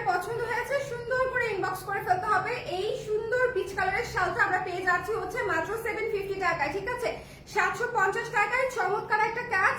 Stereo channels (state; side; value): identical; both; correlation 1.00